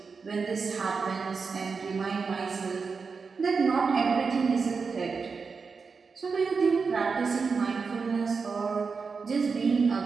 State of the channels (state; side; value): quieter; left; 5.0 dB